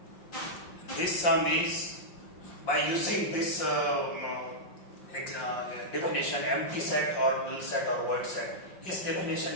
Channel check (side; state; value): right; late; 5.7 ms